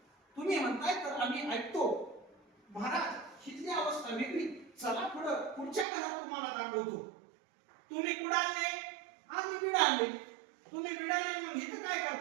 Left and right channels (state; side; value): drops out; left; at 5.9 s